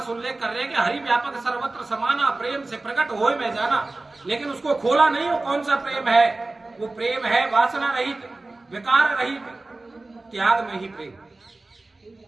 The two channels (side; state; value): left; quieter; 3.1 dB